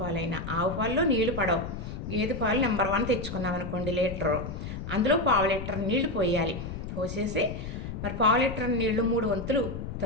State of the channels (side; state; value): left; noise; rumble, 7 dB below the sound